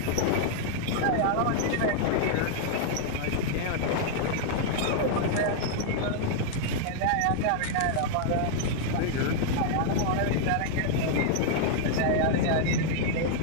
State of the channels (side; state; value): both; different; correlation 0.00